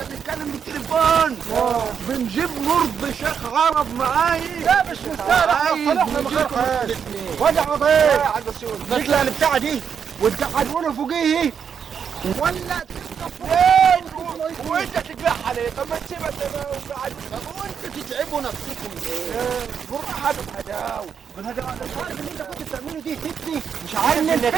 بنتكلم بالتليفون بنجيب مرض شيخ عرب معايا. لا مش مستاهل، احنا صلحنا من غير خير. وجع يا عضيق حاج بسيوني نطلع البتاعه دي وتقعدونا فوقيه ولا فين وانت تجرحها ليه؟ طب ما تسيبها زي ما هو قاعد. طب وانتوا تتعبوا نفسكم ليه؟ بالراحه بالهداوه. مش عارف اللي انت كنت بتعمله دي فتني، مش عارف انك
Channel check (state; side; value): quieter; left; 7.3 dB